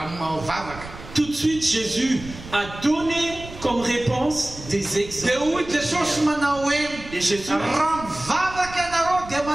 tout de suite Jésus a donné comme réponse des exemples. Et Jésus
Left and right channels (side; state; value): right; noise; rumble, 15 dB below the sound